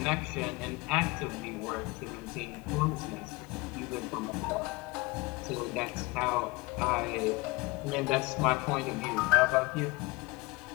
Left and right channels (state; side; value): quieter; right; 23.8 dB